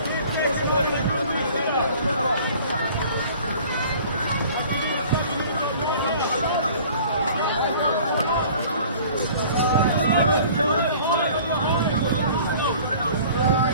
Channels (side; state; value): both; inverted; correlation -0.48